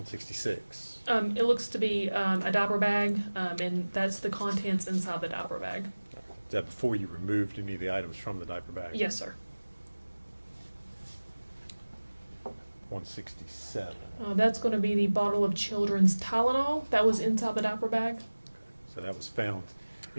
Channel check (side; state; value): both; inverted; correlation -1.00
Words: It looks to be a diaper bag, and that's the contents inside the diaper bag. Is that before you removed any of the items from the diaper bag? Yes, sir. 167. That's going to be the bottle of children's Tylenol that was inside the diaper bag. So that was found